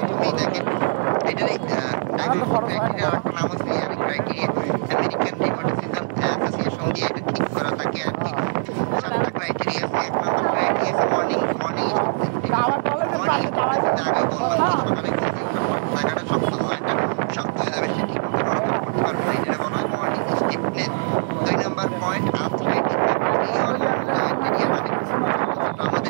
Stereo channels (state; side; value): silent; left; digital silence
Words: দেখেন এটার ডায়াগনস্টিক ক্রাইটেরিয়া আরেকটা নাম হচ্ছে ক্রাইটেরিয়া আমেরিকান রিউমাটিসিজম অ্যাসোসিয়েশন দিয়ে এটা ঠিক করা থাকে আর কি। 7টা ক্রাইটেরিয়া আছে। 1 নম্বর ক্রাইটেরিয়া আছে মর্নিং আগে বললাম সকালে ঘুম থেকে ওঠার পর জায়গাটা শক্ত হয়ে যাবে, সে ঠিক মতো নড়াচড়া করতে পারবে না, এটা বলা হয় মর্নিং স্টিফনেস। 2 নম্বর পয়েন্ট আর্থ্রাইটিস ক্রাইটেরিয়া মানে